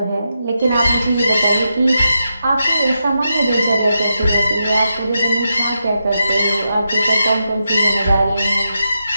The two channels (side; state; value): both; inverted; correlation -0.86